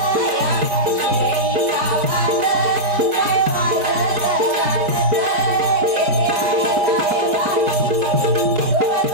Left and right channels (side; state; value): left; late; 4.6 ms